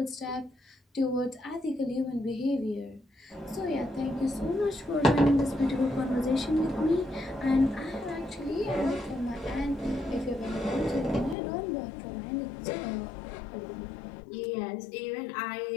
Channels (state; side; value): drops out; right; at 11.4 s